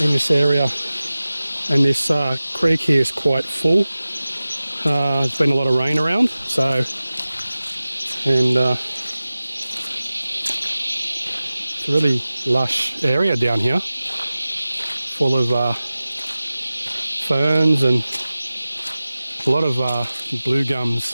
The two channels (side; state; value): both; inverted; correlation -0.96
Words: this area, and this creek here is quite full. There's been a lot of rain around, so it's a really lush area down here, full of ferns and a lot of blue